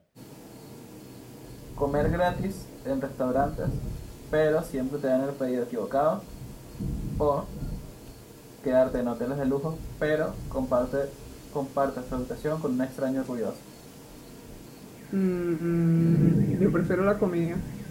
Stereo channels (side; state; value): both; identical; correlation 1.00